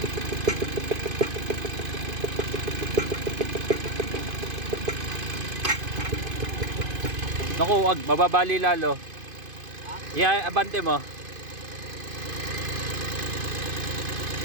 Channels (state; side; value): late; left; 2.5 ms